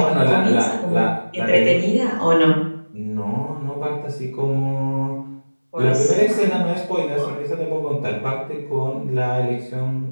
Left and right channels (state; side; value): inverted; both; correlation -1.00